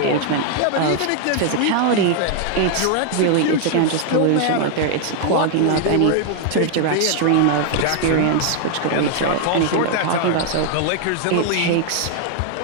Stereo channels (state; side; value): different; both; correlation 0.00